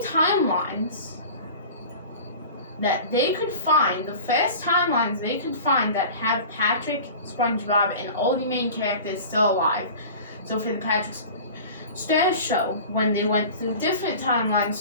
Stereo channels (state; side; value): inverted; both; correlation -0.38